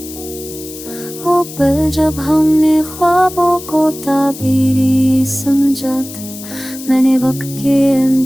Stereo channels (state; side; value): noise; left; hiss, 14 dB below the sound